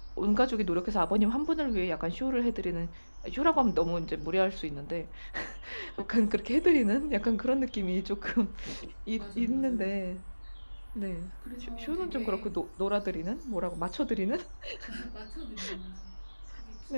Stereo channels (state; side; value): inverted; both; correlation -1.00